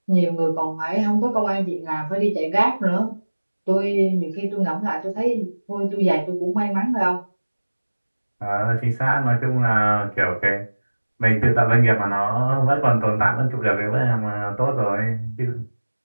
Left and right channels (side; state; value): both; inverted; correlation -1.00